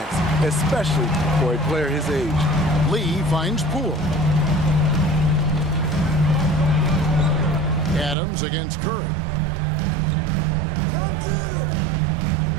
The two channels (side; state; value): left; drops out; at 8.2 s